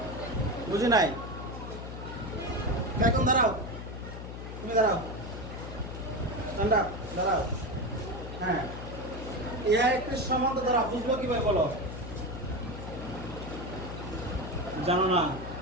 বুঝি নাই। এখন দাঁড়াও, তুমি দাঁড়াও, ঠান্ডা দাঁড়াও। হ্যাঁ, ইহা একটি সমান্তর দ্বারা বুঝবো কিভাবে বলো? জানো না?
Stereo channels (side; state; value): left; noise; hum, 9 dB below the sound